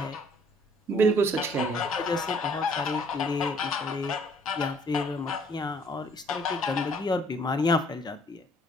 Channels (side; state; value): both; normal; correlation 0.60